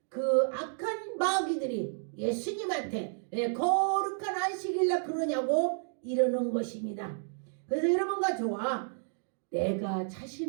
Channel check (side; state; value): left; silent; digital silence